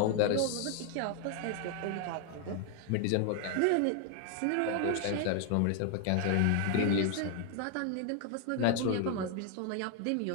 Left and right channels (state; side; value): different; both; correlation 0.00